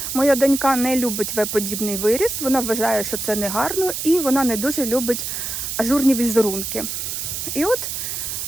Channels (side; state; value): right; noise; hiss, 4 dB below the sound